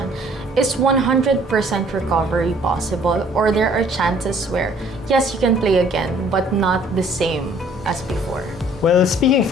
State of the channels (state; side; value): normal; both; correlation 0.58